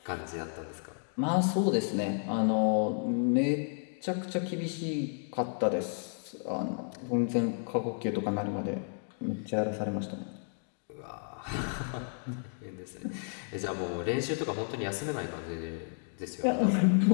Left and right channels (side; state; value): right; silent; 56 dB below the other